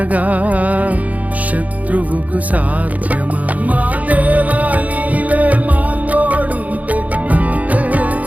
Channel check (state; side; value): late; left; 0.074 ms